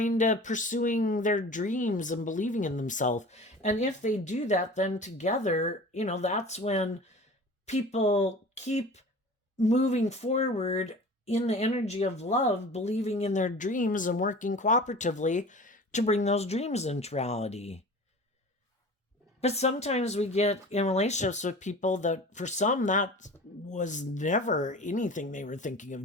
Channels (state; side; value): normal; both; correlation 0.39